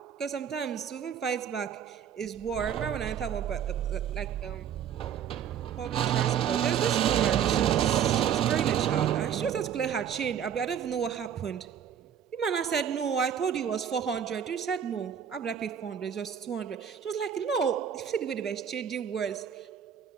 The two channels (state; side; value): quieter; left; 8.7 dB